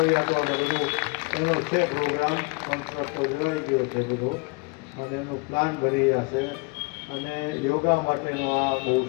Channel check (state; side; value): quieter; right; 29.3 dB